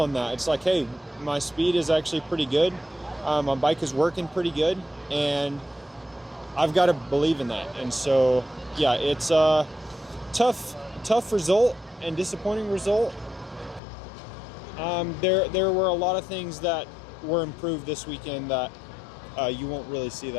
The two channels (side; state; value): right; drops out; at 13.8 s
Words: that. It's hey, my speed is actually pretty good. My bike is working pretty good, and I've got to believe in that. And so, yeah, it's a tough result and disappointing result. There were a lot of things that were improved this weekend that you won't really see